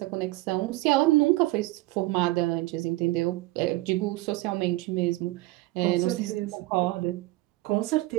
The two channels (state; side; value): quieter; left; 19.5 dB